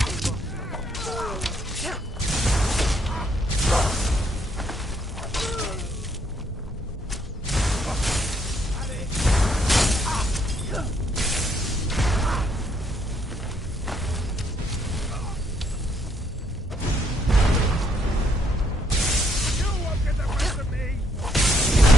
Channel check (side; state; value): both; normal; correlation 0.70